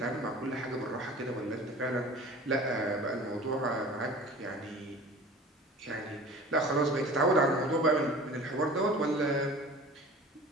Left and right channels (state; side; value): normal; both; correlation 0.41